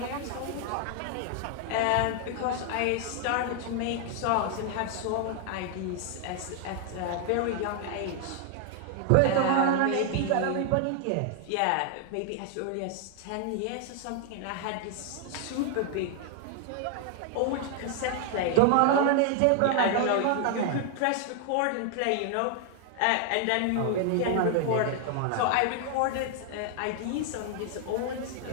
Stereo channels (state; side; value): different; both; correlation 0.00